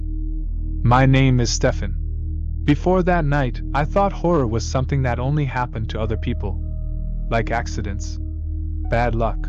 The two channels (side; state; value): both; identical; correlation 1.00